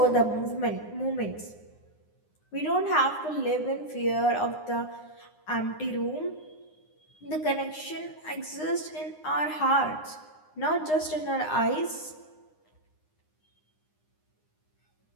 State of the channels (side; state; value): right; late; 9.7 ms